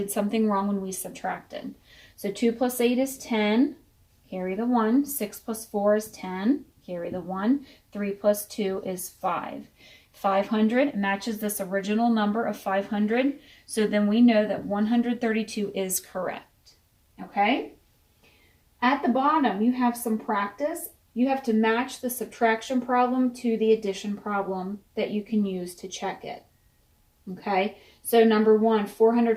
something wrong when we subtracted. So 2 plus 8 is 10, carry the 1. 6 plus 4 is 10, carry the 1. 3 plus 2 is 5. 500 matches this original number of 500, so then we know that 132 is correct, okay? At the bottom, you have some practice. You have to match the subtraction problem to the addition problem that you can use to check it, okay? So number 1,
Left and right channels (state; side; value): identical; both; correlation 1.00